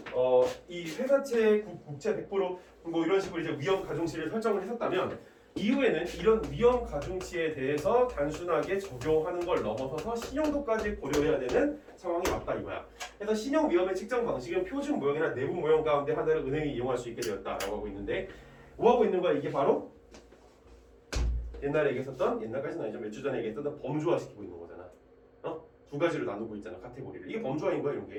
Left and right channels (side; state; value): both; identical; correlation 1.00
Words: 이 회사채 국채 100%뭐 이런 식으로 이제 위험 가중치를 설정을 했었다면 이후에는 이런 위험 가중치에 대해서 단순하게 적용하는 걸 넘어서서 신용도까지 고려해야 되는 상황이 왔다 이거야. 그래서 신용 위험의 측정 방식은 표준 모형이나 내부 모형 가운데 하나를 은행이 이용할 수 있게 되었다라고 하고 있는데 뭐 하고 있는 거야? 이게 바로 옛날에 얘기했었던 옛날까지는 아니죠. 몇 주 전에 얘기했던 범주화시키고 있는 거잖아. 두 가지로 나누고 있잖아. 카테고리를. 이게 범주화인 거야 이런